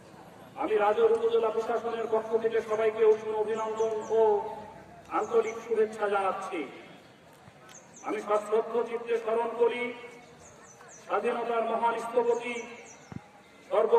আমি রাজৌর উপজেলা প্রশাসনের পক্ষ থেকে সবাইকে উষ্ণ অভিনন্দন ও আন্তরিক শুভেচ্ছা জানাচ্ছি। আমি সশ্রদ্ধ চিত্তে স্মরণ করি স্বাধীনতার মহান স্থপতি,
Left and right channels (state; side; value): identical; both; correlation 1.00